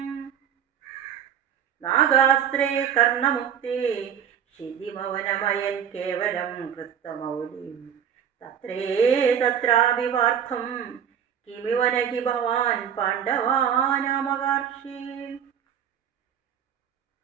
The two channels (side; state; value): left; quieter; 8.6 dB